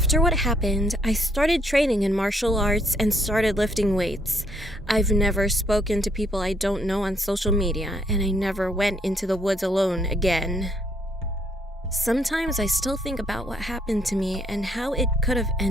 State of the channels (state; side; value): normal; both; correlation 0.71